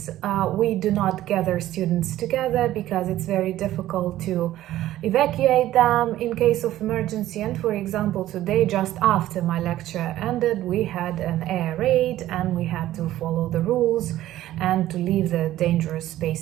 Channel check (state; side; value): quieter; left; 14.1 dB